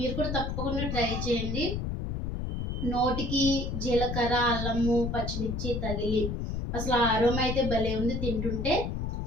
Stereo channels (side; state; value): left; noise; rumble, 2 dB below the sound